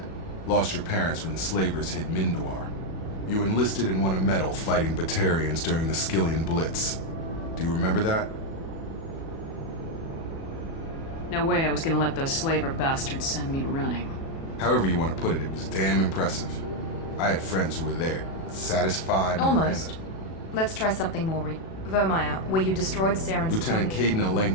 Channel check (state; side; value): late; right; 37 ms